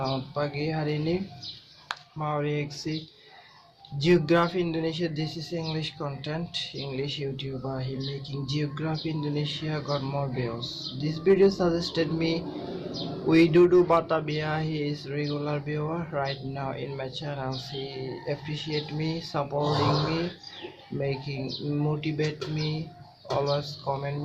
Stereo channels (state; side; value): identical; both; correlation 1.00